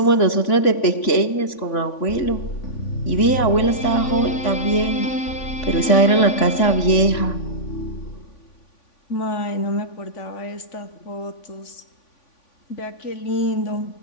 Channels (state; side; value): late; right; 3.5 ms